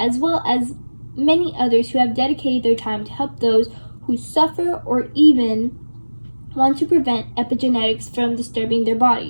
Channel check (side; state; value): both; inverted; correlation -1.00